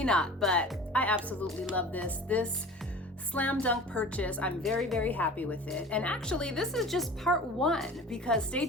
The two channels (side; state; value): both; normal; correlation 0.40